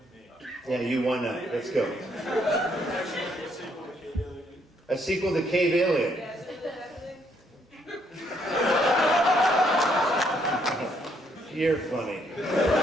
Yeah, you won that. Let's go. A sequel to Cave Alien. You're funny.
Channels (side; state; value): both; normal; correlation 0.71